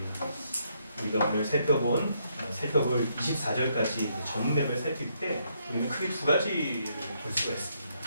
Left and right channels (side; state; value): both; inverted; correlation -0.74